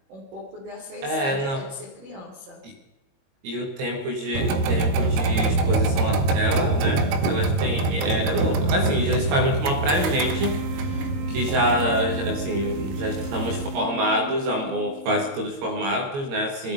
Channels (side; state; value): left; late; 22 ms